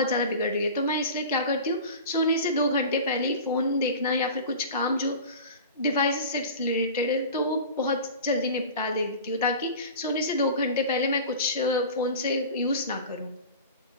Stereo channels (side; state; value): both; inverted; correlation -0.35